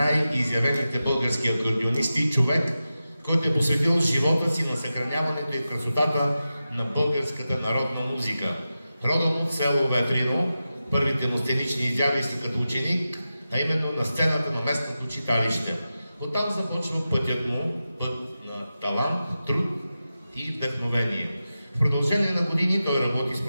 български акордеонисти, човек, който е посветил живота си на съхраняването и красотата на българската народна музика. Родом от село Ветрино, първите му сценични изяви са като ученик, а именно на сцената на местното читалище. Оттам започва пътят му, път на талант, труд и вдъхновение. В продължение на години той работи с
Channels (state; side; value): inverted; both; correlation -0.92